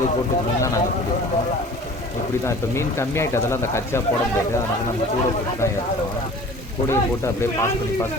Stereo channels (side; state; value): both; normal; correlation 0.44